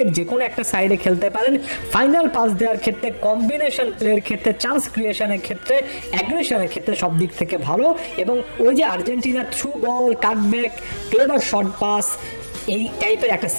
যে কোনো একটা সাইডে খেলতে পারেন, ফাইনাল পাস দেওয়ার ক্ষেত্রে, কম্বিনেশন প্লের ক্ষেত্রে, চান্স ক্রিয়েশনের ক্ষেত্রে, অ্যাগ্রেশনের ক্ষেত্রে সব দিক থেকে ভালো। এবং ওই যে আর্জেন্টিনার through ball, cutback, clever short pass, এই টাইপের একটা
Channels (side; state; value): both; inverted; correlation -1.00